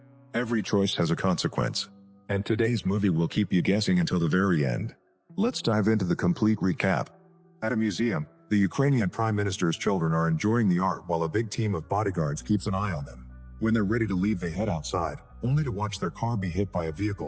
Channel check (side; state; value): both; identical; correlation 1.00